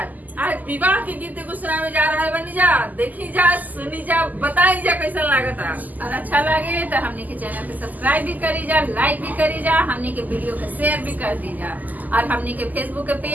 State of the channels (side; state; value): left; late; 0.082 ms